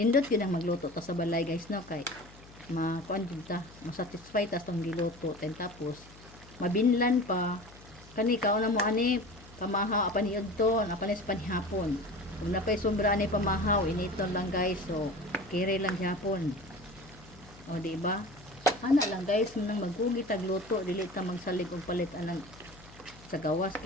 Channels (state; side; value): noise; left; hum, 21 dB below the sound